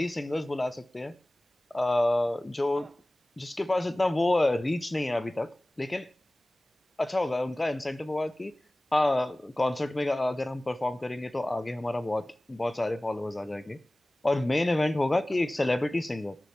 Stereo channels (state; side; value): normal; both; correlation 0.98